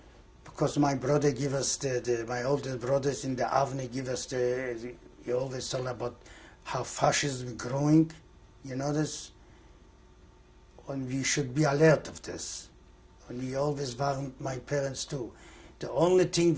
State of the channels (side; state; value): both; identical; correlation 1.00